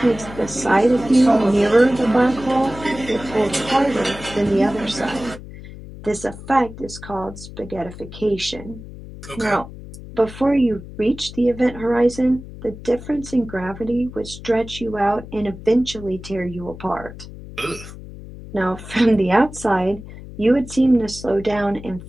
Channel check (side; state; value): left; noise; hum, 14 dB below the sound